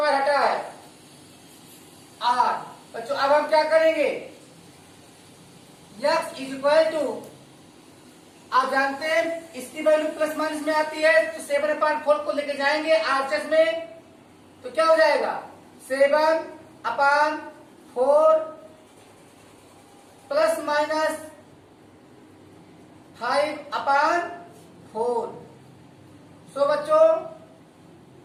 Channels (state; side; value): identical; both; correlation 1.00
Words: हटा है, r। बच्चों अब हम क्या करेंगे, x इज इक्वल टू, आप जानते हैं इसकी वैल्यू प्लस माइनस में आती है, तो 7/4 को लेके जाएंगे आरएचएस में, तो क्या हो जाएगा, 7/4 प्लस माइनस 5/4। सो बच्चों